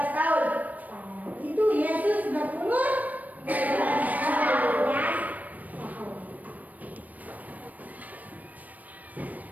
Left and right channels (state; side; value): late; left; 0.076 ms